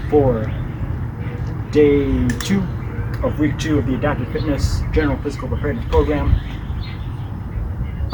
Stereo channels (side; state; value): both; identical; correlation 1.00